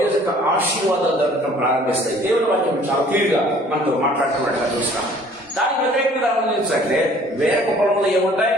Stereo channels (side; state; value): both; normal; correlation 0.54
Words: యొక్క ఆశీర్వాదాలు దొరకడం ప్రారంభిస్తాయి. దేవుని వాక్యం చాలా క్లియర్ గా మనతో మాట్లాడుతున్నట్టుగా చూస్తాం. దానికి వ్యతిరేకంగా గమనించంటే వేరొక పొలంలో ఏముంటాయి?